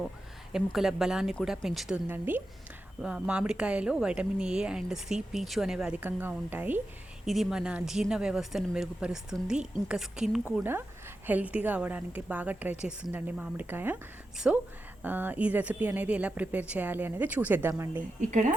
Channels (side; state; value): both; normal; correlation 0.90